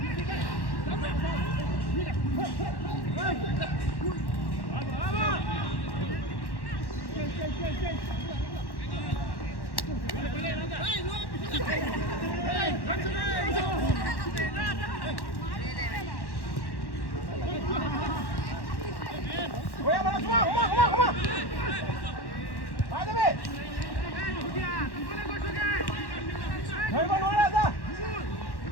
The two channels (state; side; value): late; right; 1.1 ms